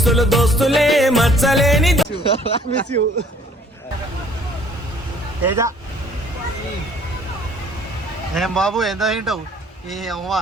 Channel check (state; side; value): normal; both; correlation 0.58